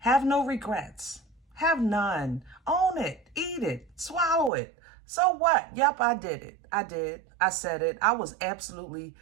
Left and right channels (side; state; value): left; drops out; at 4.5 s